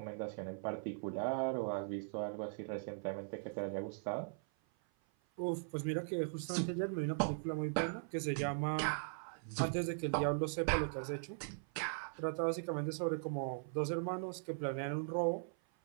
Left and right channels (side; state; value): left; silent; 51 dB below the other